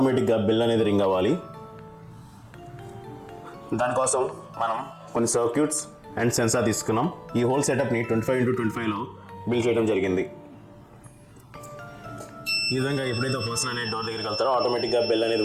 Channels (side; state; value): both; identical; correlation 1.00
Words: బెల్ అనేది రింగ్ అవ్వాలి. దానికోసం మనం కొన్ని సర్క్యూట్స్ అండ్ సెన్సార్ తీసుకున్నాం. ఈ హోల్ సెటప్ని 25x25లో బిల్డ్ చేయడం జరిగింది. ఈ విధంగా ఎప్పుడైతే పర్సన్ అనేది డోర్ దగ్గరికి వెళ్తారో ఆటోమేటిక్గా బెల్ అనేది